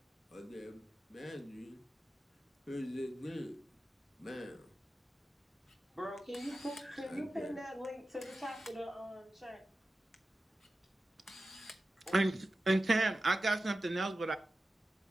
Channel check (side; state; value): both; normal; correlation 0.93